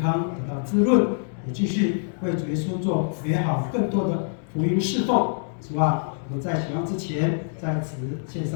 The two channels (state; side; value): silent; right; digital silence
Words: 得到滋润，也继续为主耶稣做美好更多的福音侍奉。主啊，我们在使用之前，在此献